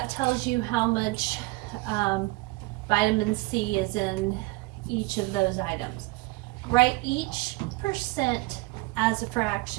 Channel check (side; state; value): left; quieter; 22.8 dB